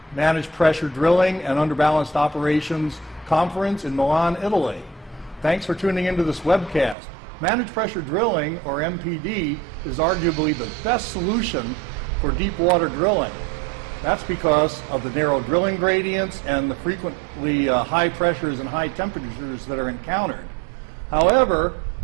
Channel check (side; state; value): left; drops out; at 7.0 s